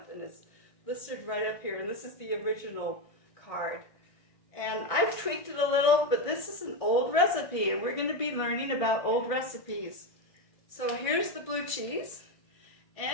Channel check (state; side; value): late; right; 1.5 ms